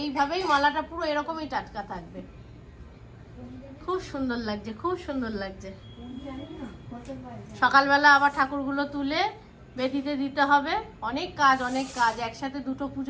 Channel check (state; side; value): identical; both; correlation 1.00